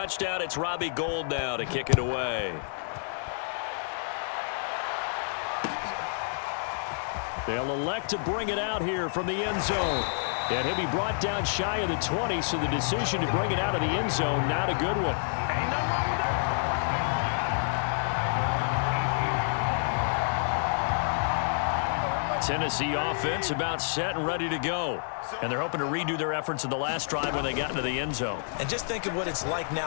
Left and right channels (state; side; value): silent; right; digital silence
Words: it's Robbie Gould now to kick it away. They'll elect to bring it out here from the end zone. And he'll be brought down shy of the 20, so the decision to bring it out of the end zone, not a good one. Tennessee offense about set and ready to go. And they're hoping to redo their efforts in the last drive when they got into the end zone. And just think of what it's like